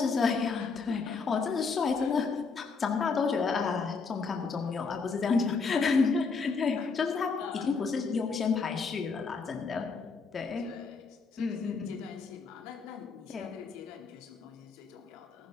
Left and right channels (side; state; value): right; quieter; 4.8 dB